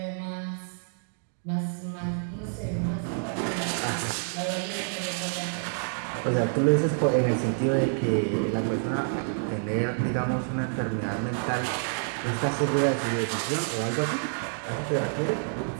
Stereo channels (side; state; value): left; silent; digital silence